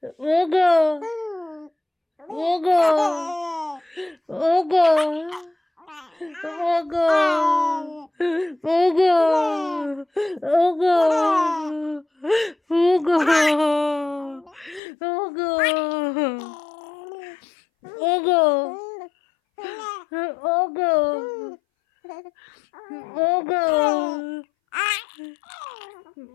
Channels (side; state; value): right; drops out; at 14.8 s